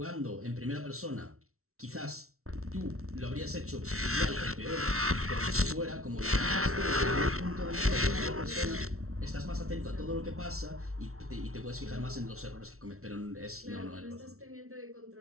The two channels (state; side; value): late; left; 0.63 ms